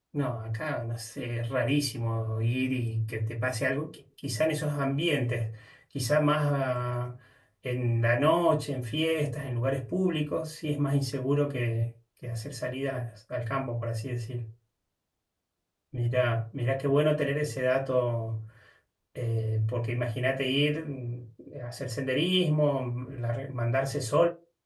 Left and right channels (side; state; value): both; identical; correlation 1.00